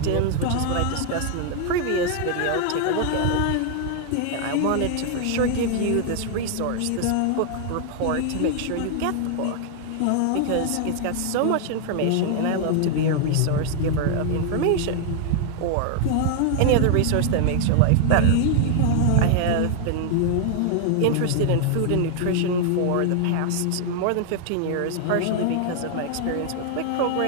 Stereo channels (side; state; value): both; different; correlation 0.00